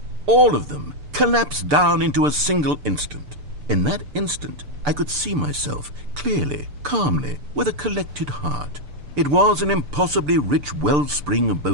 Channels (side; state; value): left; late; 6.8 ms